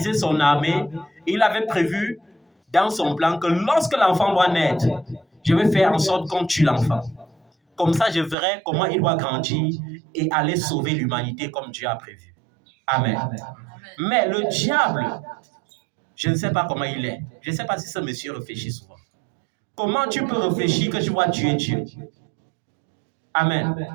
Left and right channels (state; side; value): drops out; left; at 8.3 s